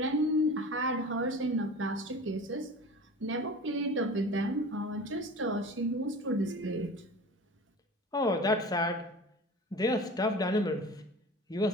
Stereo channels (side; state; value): both; normal; correlation 0.37